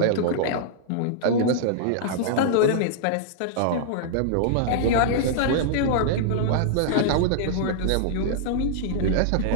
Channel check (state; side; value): different; both; correlation -0.01